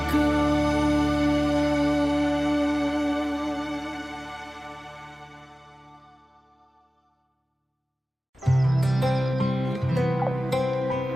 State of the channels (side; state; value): both; normal; correlation 0.97